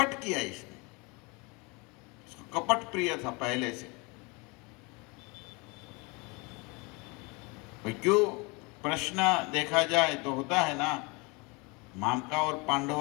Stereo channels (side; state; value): right; quieter; 28.3 dB